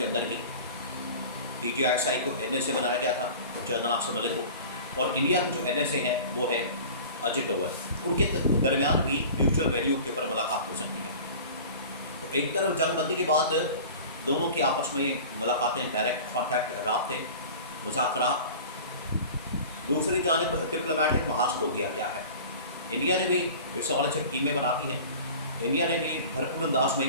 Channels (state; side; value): inverted; both; correlation -0.39